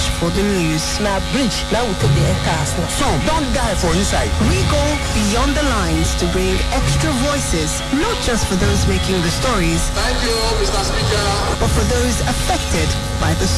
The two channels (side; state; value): both; identical; correlation 1.00